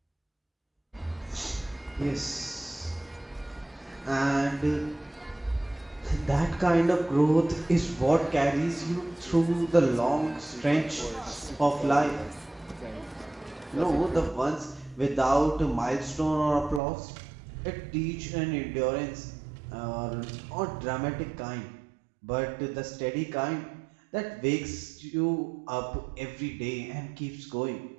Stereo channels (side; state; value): left; drops out; at 16.8 s